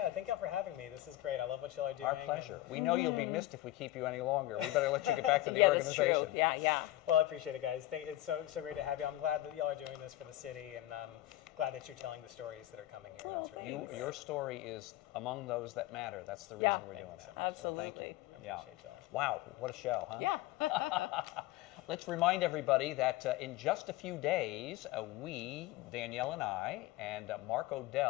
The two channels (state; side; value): quieter; right; 16.0 dB